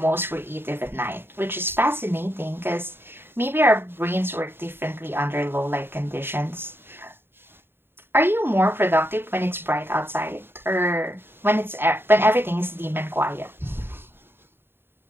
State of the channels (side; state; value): left; late; 0.11 ms